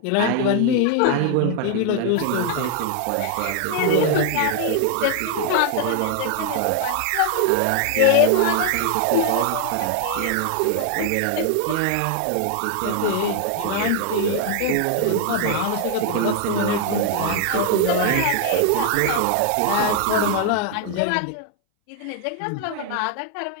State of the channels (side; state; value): both; different; correlation 0.00